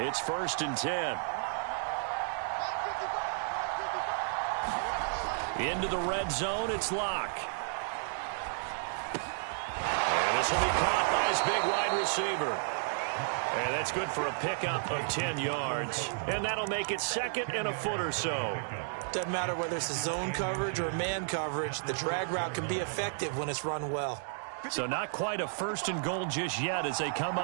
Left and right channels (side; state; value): left; silent; digital silence